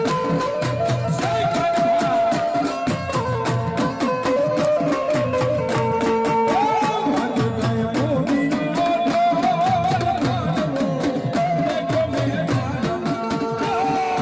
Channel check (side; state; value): both; identical; correlation 1.00